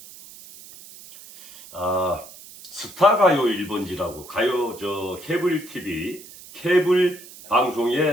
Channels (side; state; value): right; noise; hiss, 18 dB below the sound